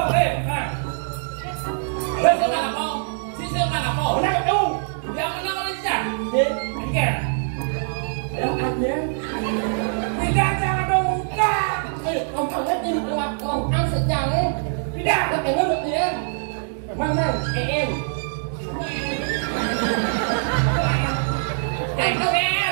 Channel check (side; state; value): left; silent; digital silence